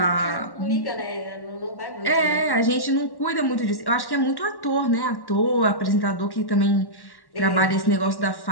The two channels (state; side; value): late; right; 1.1 ms